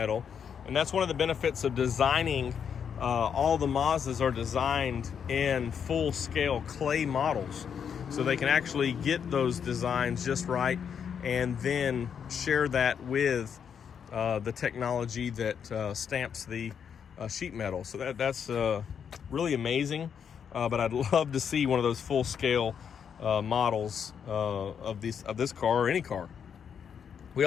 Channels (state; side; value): quieter; right; 7.5 dB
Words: And that's one of the benefits of designing. All the Mazdas are designed in full-scale clay models, so they can actually get those designs just right and then share that with the technology that stamps the sheet metal. So that's really amazing, but I'd love to see one of those full-scale models of this car, or any car. We